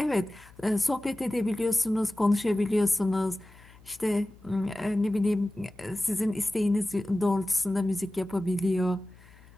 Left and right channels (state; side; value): noise; left; hum, 24 dB below the sound